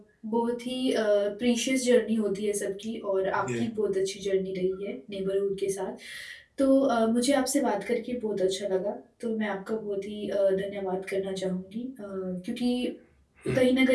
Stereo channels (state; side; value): identical; both; correlation 1.00